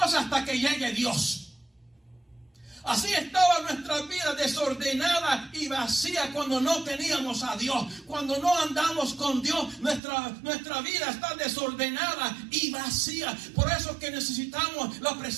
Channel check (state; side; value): drops out; left; at 10.0 s